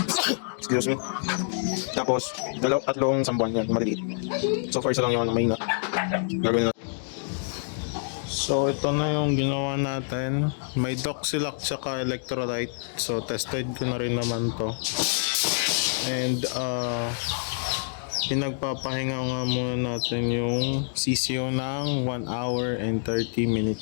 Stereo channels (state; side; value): silent; right; digital silence